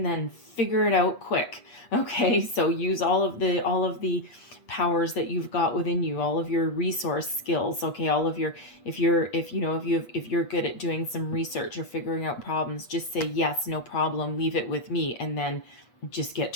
then figure it out quick. Okay, so use all of the powers that you've got within you, all of your resource skills. Okay, all of your if you're good at doing some research or figuring out problems, just say yes, no problem, leave it with me, and then just get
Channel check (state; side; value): late; right; 8.3 ms